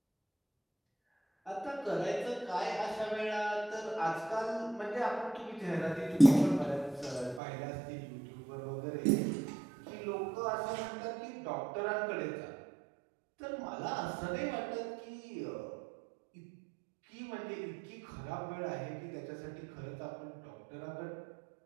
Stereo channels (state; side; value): drops out; left; at 7.4 s